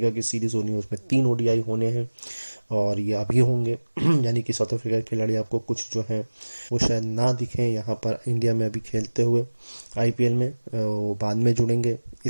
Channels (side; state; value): both; inverted; correlation -1.00